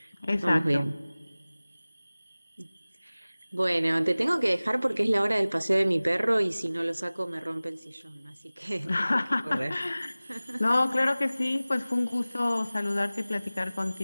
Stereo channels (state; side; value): inverted; both; correlation -0.98